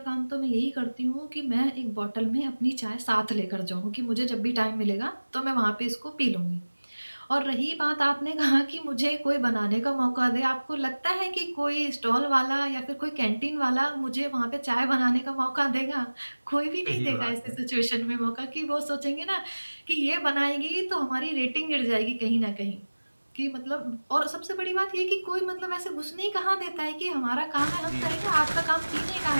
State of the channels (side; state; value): both; inverted; correlation -1.00